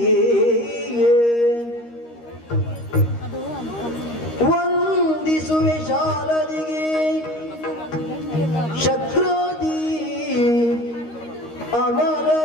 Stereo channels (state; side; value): late; right; 13 ms